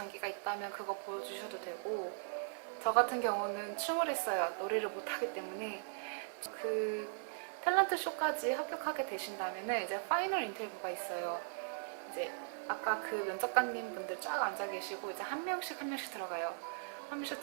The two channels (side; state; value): left; silent; digital silence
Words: 있다면 그거 보여주셔도 되고, 저 같은 경우는 춤을 했어요. 노래를 못하기 때문에. 그 탤런트 쇼까지 합격하게 되신다면 이제 파이널 인터뷰가 있어요. 이제 아까 그 면접관님 분들 쫙 앉아 계시고 이제 한 명씩 들어가요. 한 명씩